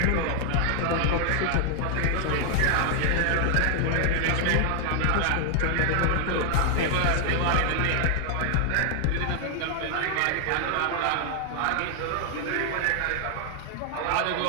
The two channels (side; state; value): both; different; correlation 0.00